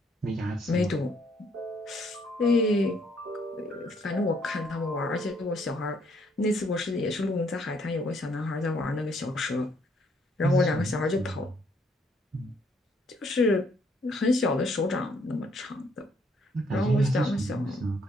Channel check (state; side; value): normal; both; correlation 0.68